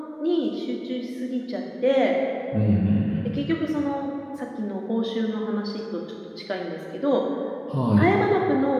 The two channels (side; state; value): both; identical; correlation 1.00